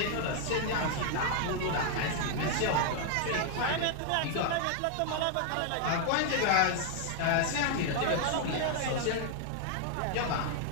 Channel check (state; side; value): different; both; correlation 0.00